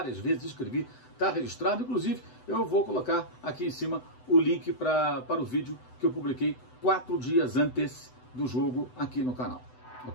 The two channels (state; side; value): late; right; 8.0 ms